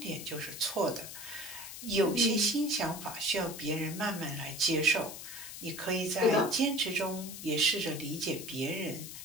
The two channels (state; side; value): noise; left; hiss, 10 dB below the sound